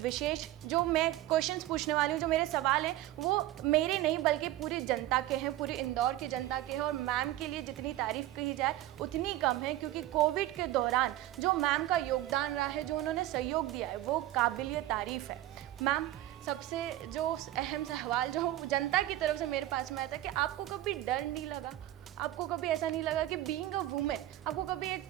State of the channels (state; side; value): quieter; left; 14.8 dB